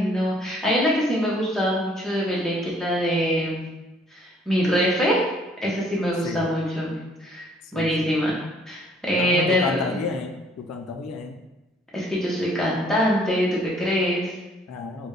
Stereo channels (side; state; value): both; normal; correlation 0.61